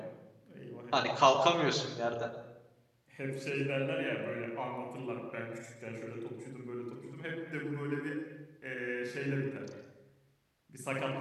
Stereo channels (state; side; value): identical; both; correlation 1.00